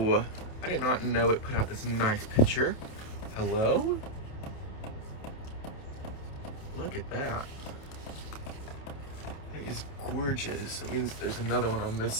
I did not know it put out this nice picture. Hello? Look at that. He's gorgeous. It means there's another one on this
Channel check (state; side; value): late; right; 28 ms